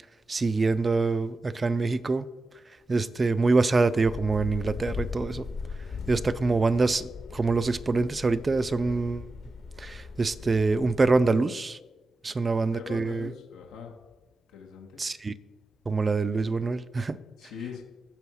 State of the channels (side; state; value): left; quieter; 3.0 dB